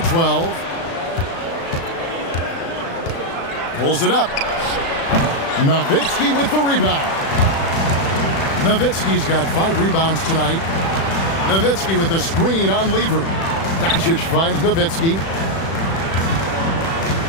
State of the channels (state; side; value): late; right; 36 ms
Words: 12. Pulls it up. Nowitzki with the rebound. Nowitzki's got 5 rebounds tonight. Nowitzki with the screen on Lever. Doncic finds Nowitzki.